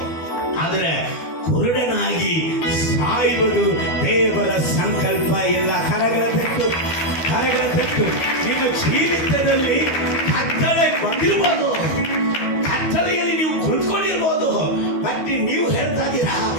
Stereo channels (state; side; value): late; right; 12 ms